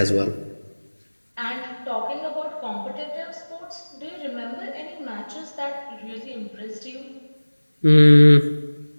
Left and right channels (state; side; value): inverted; both; correlation -1.00